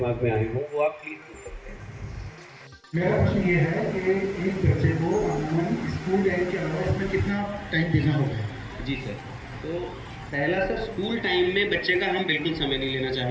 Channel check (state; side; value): identical; both; correlation 1.00